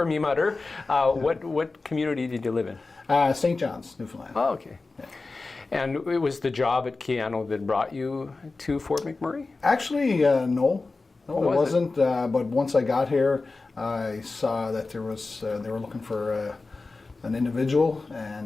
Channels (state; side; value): quieter; right; 3.7 dB